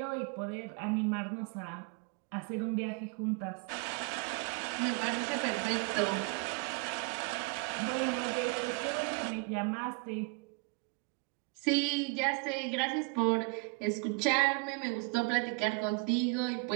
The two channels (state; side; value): quieter; left; 30.6 dB